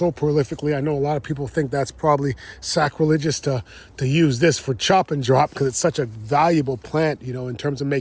prolifically. I know a lot of people think that's probably sacrilegious to use this for chop and drop, because it's such a valuable plant, you know, in terms of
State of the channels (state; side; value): identical; both; correlation 1.00